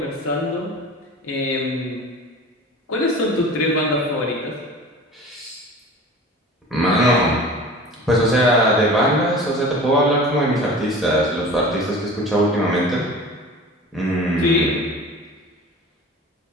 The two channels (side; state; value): both; normal; correlation 0.39